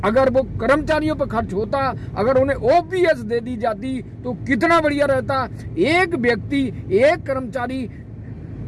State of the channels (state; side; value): identical; both; correlation 1.00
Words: अगर वो कर्मचारियों पर खर्च होता, अगर उन्हें ओपीएस दे दी जाती तो कितना बढ़िया रहता। एक व्यक्ति, एक कर्मचारी